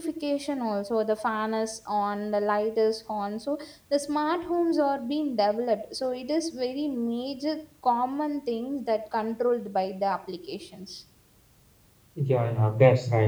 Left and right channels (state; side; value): identical; both; correlation 1.00